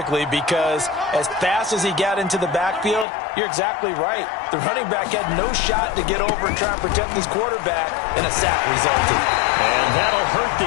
because as fast as he got into the backfield, you're exactly right. The running back had no shot to get over and try and protect his quarterback, and a sack resulted. And that'll hurt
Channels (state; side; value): drops out; right; at 3.1 s